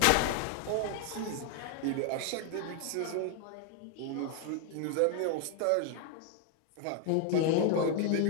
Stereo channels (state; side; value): different; both; correlation 0.00